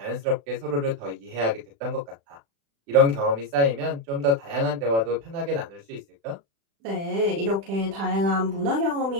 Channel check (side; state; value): left; late; 36 ms